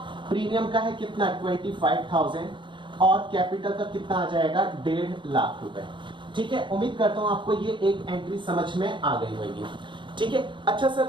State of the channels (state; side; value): late; left; 0.23 ms